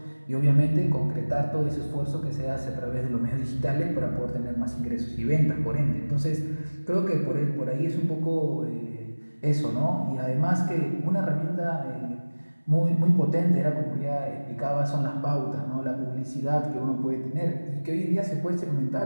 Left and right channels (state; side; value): inverted; both; correlation -1.00